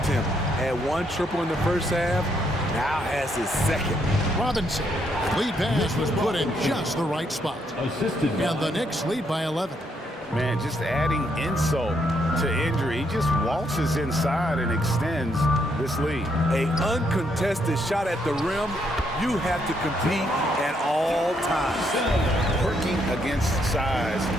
him. Had 1 triple in the first half, now has his second. Robinson. Lead pass was put in just the right spot. And the Knicks lead by 11. Man, just adding insult to injury. He just waltzes inside and extends this lead. An uncontested shot at the rim, you have to compete at all times. Working against size,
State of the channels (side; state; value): both; normal; correlation 0.74